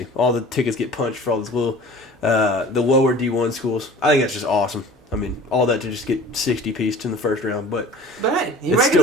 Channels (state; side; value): normal; both; correlation 0.44